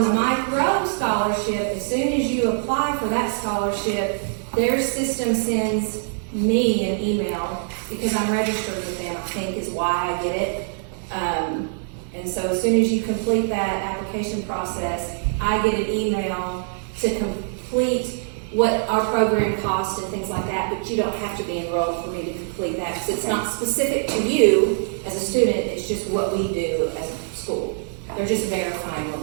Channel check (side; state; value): left; silent; 63 dB below the other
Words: the Mike Rowe scholarship, as soon as you apply for that scholarship, their system sends me an email, because I'm registered with them, I think is why I get it. And so as soon as you complete that application process, I get an email to complete what our program costs and things like that, but you don't have to be enrolled for me to complete that, because it's not specific to you as a student, it's just what we do as a school. They're just verifying what